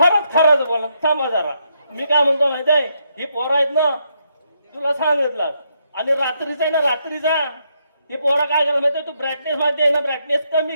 बोला. थांबा जरा, मी काय म्हणतो माहिती आहे, ही पोरं आहेत ना, तुला सांगितलं. आणि रात्रीचा आहे ना, रात्रीचा ही पोरं काय करतात माहिती, तू ब्राईटनेस माहिती आहे ना, ब्राईटनेस कमी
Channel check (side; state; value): both; inverted; correlation -0.77